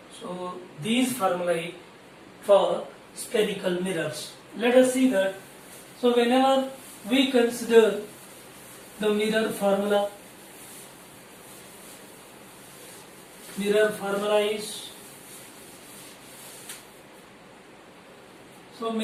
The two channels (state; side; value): identical; both; correlation 1.00